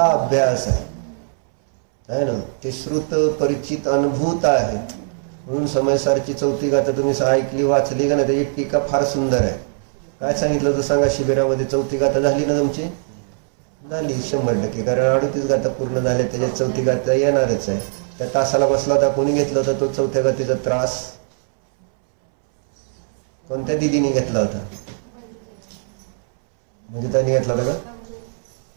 अभ्यास आहे ना. ते श्रुत परिचित अनुभूत आहे. म्हणून समयसारची चौथी गाथा तुम्ही ऐकली वाचली का नाही? त्याची टीका फार सुंदर आहे. काय सांगितलं तर सांगा? शिबिरामध्ये चौथी गाथा झाली ना तुमची? झाली 100%, कारण 38 गाथा पूर्ण झाल्या, त्याच्यात चौथी गाथा येणारच आहे. त्या तासाला बसला होता, कोणी घेतला होता तो चौथ्या गाथेचा त्रास? कोणत्या दिदीने घेतला होता? म्हणजे त्यांनी घेतला होता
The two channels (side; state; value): left; silent; 65 dB below the other